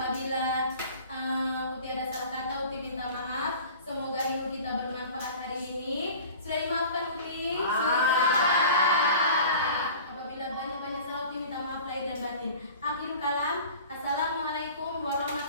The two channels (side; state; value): both; inverted; correlation -0.42